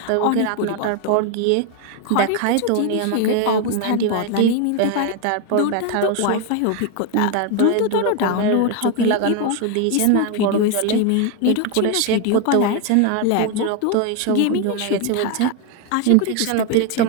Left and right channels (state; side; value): different; both; correlation 0.01